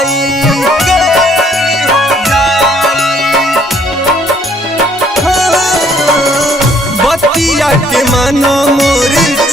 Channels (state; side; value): normal; both; correlation 0.63